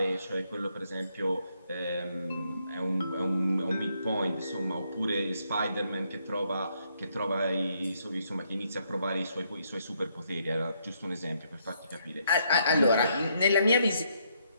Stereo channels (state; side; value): inverted; both; correlation -0.74